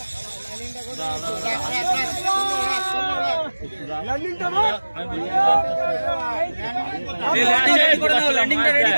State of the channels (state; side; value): inverted; both; correlation -1.00